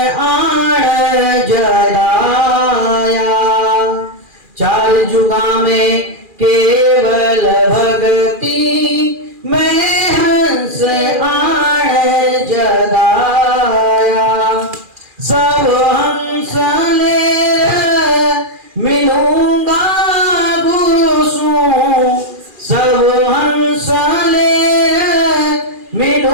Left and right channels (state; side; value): late; left; 2.4 ms